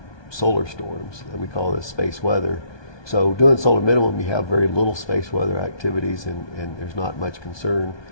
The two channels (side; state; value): right; late; 1.2 ms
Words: solar storms. We call this space weather. So doing solar minimum, you have very little space weather activities, and there's not much concern.